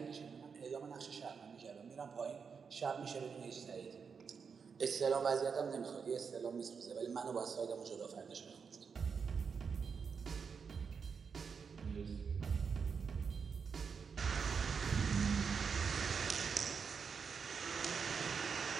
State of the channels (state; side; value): quieter; left; 5.9 dB